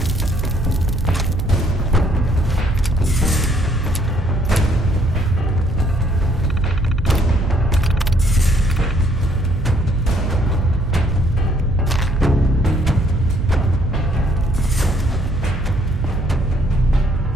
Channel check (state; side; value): noise; right; hum, 5 dB below the sound